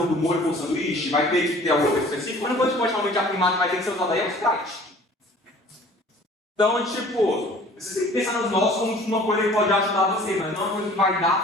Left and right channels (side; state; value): both; normal; correlation 0.50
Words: do molho com o sanduíche, vai ter que ter alguma coisa específica, mas depois pode realmente afirmar que vai ter que ser usado aí é o Sprite. Então, tipo, você tem que pensar nos nós como uma coisa que pode ajudar você, mas não é uma coisa que vai dar